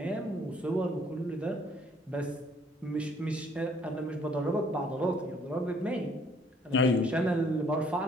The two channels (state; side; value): normal; both; correlation 0.62